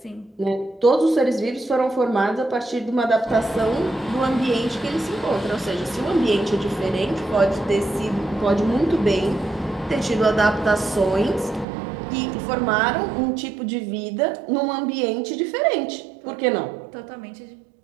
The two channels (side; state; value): left; drops out; at 11.7 s